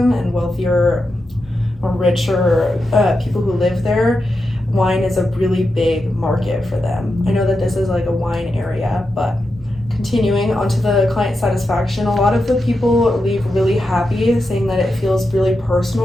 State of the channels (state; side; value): normal; both; correlation 0.88